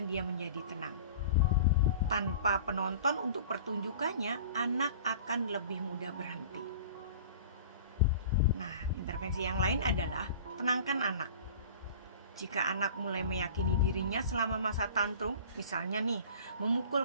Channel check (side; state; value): both; inverted; correlation -0.41